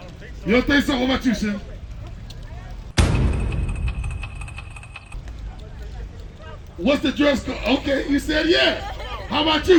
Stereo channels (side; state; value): both; identical; correlation 1.00